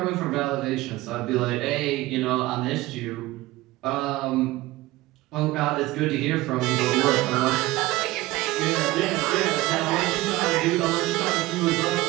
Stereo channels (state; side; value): quieter; left; 18.7 dB